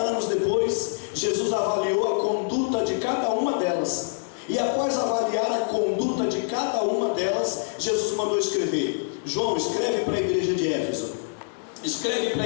depois, Jesus avaliou a conduta de cada uma delas. E após avaliar a conduta de cada uma delas, Jesus mandou escrever: João, escreve para a igreja de Éfeso, escreve para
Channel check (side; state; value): right; silent; digital silence